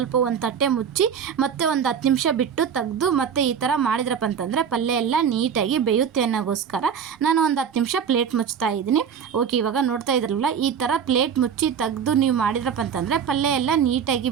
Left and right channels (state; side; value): quieter; left; 7.5 dB